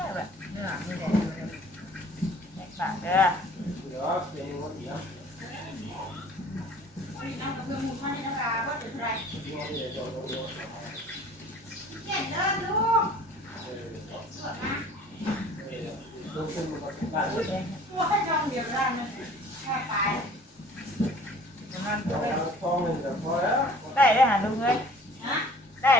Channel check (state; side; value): normal; both; correlation 0.50